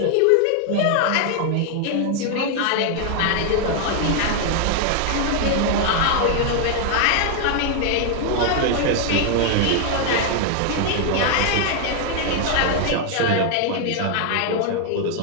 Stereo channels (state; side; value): different; both; correlation 0.00